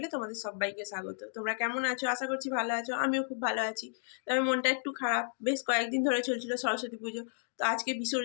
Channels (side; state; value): right; silent; digital silence